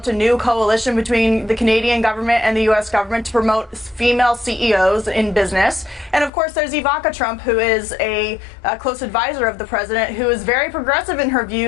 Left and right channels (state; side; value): drops out; right; at 6.3 s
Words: a new coalition between the Canadian government and the U.S. government to promote female CEOs in business. And of course, there's Ivanka Trump, who is a close advisor of the president, who is very progressive in her